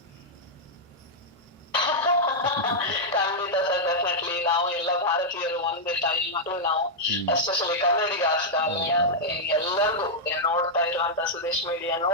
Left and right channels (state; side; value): normal; both; correlation -0.05